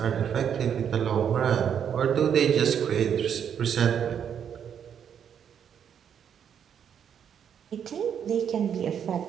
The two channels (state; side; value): quieter; left; 8.3 dB